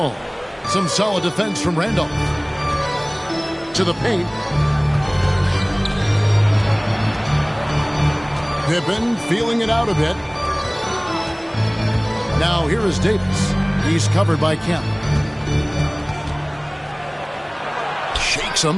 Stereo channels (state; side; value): identical; both; correlation 1.00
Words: Some solid defense from Randolph. To the paint. Pippen feeling it out a bit. Now here is Davis. He's covered by Kemp. Shakes